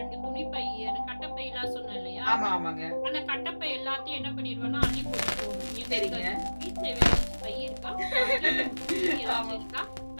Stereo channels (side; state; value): both; inverted; correlation -1.00